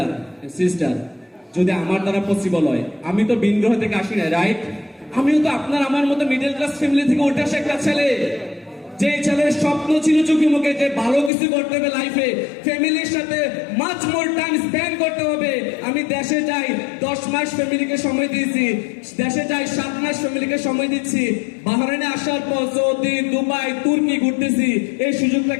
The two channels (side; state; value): right; drops out; at 11.3 s